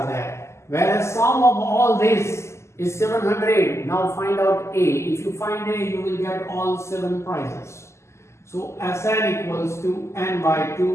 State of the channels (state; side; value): late; right; 0.13 ms